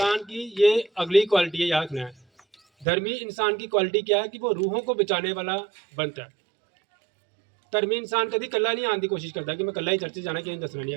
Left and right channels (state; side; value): drops out; left; at 2.9 s